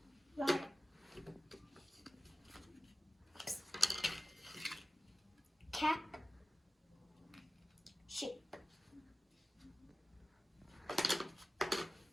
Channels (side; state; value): both; normal; correlation 0.96